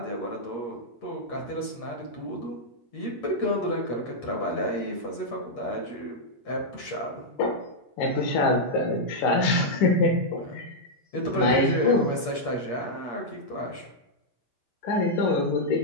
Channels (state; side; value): late; right; 8.5 ms